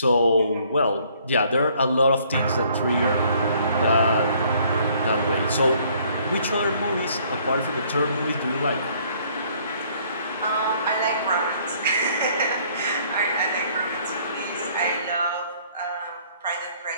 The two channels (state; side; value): inverted; both; correlation -0.62